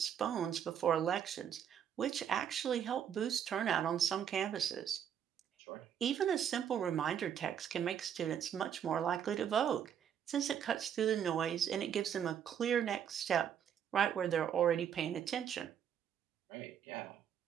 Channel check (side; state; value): left; quieter; 8.8 dB